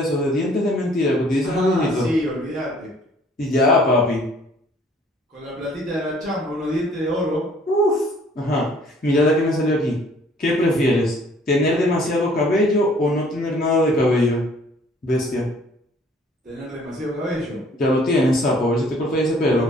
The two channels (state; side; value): normal; both; correlation 0.57